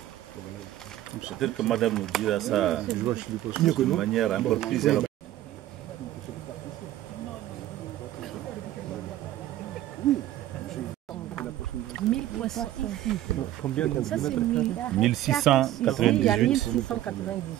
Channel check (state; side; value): quieter; left; 13.7 dB